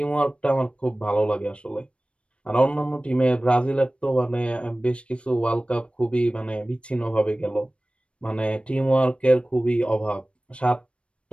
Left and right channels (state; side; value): late; right; 0.059 ms